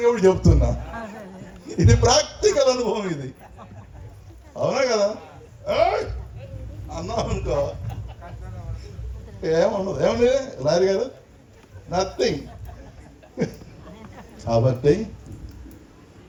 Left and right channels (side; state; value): both; identical; correlation 1.00